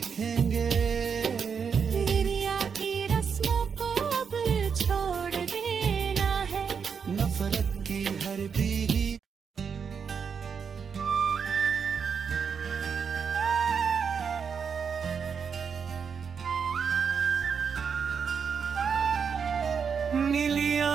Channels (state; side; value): quieter; left; 6.4 dB